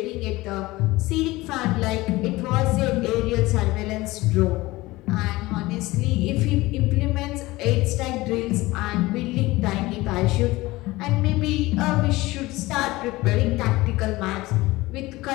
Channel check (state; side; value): quieter; right; 19.8 dB